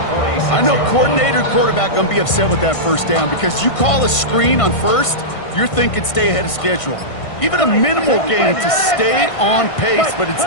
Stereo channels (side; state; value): right; late; 1.5 ms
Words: I know coordinator and quarterback going to be upset with that 1st down because you call a screen on 1st, you're thinking stay ahead of schedule. Even a minimal gain to stay on pace, but